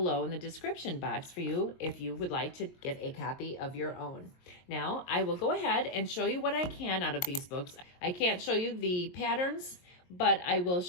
in the description box for you if you would like to get a copy of your own. Now, I will go ahead and show you what I can out of these books. I can't show you the patterns, but I will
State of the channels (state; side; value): late; right; 22 ms